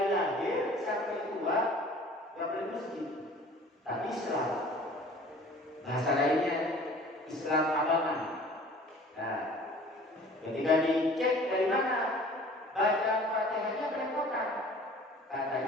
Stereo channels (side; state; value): both; normal; correlation 0.48